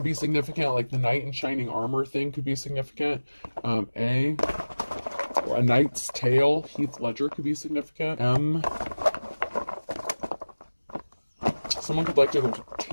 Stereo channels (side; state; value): both; inverted; correlation -1.00